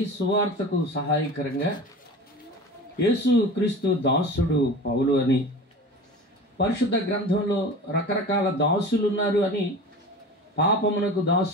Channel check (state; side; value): normal; both; correlation 0.35